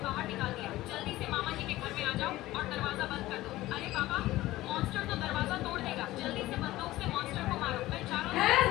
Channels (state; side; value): quieter; right; 16.8 dB